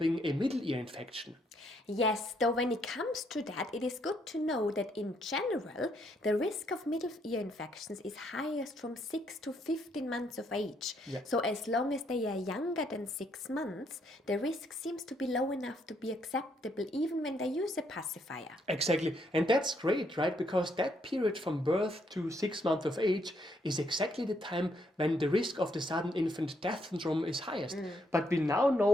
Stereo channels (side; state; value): both; normal; correlation 0.73